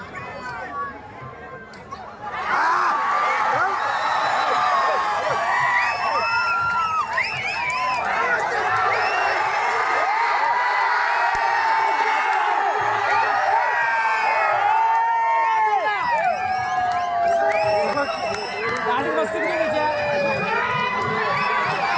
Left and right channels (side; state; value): both; identical; correlation 1.00